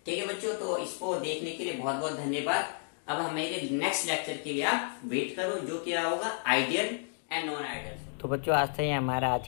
ठीक है बच्चों, तो इसको देखने के लिए बहुत बहुत धन्यवाद। अब हमारे नेक्स्ट लेक्चर के लिए आप वेट करो, जो क्या होगा आइडियल एंड नॉन आइडियल। तो बच्चों आज से ही हमारा आज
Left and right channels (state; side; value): silent; right; 57 dB below the other